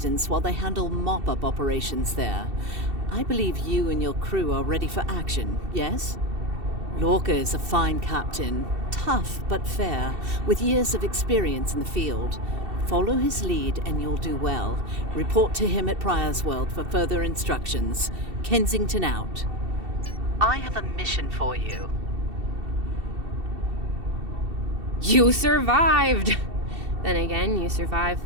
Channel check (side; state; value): left; late; 2.7 ms